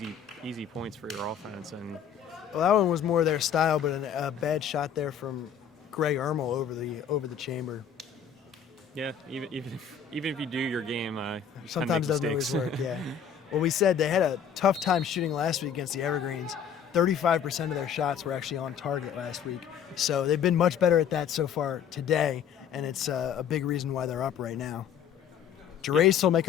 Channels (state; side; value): quieter; right; 7.9 dB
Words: easy points for your offense. And Well, that one was more their style, but a bad shot there from Greg Ermel over the chamber. yeah, even if you do your game, you Sometimes tend to doesn't make always mistakes. work, yeah. Well, we said they had a tough time shooting last week against the Evergreens. 35% of their shots were actually on target last week. So they've been much better at that so far today, and it's a big reason why they're up right now. Gerace will make